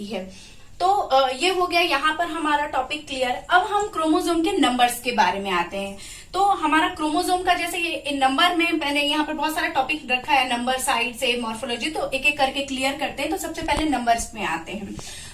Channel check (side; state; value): both; identical; correlation 1.00